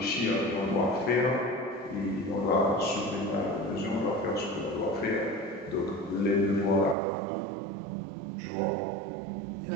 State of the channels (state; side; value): drops out; left; at 7.0 s